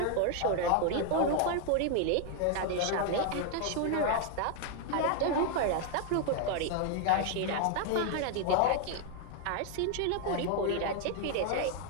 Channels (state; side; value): different; both; correlation 0.00